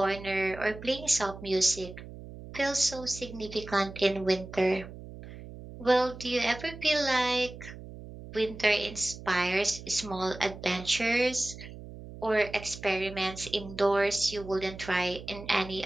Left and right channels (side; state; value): right; noise; hum, 14 dB below the sound